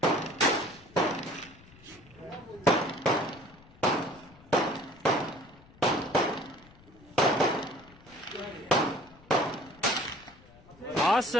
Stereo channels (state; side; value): noise; left; rumble, 24 dB below the sound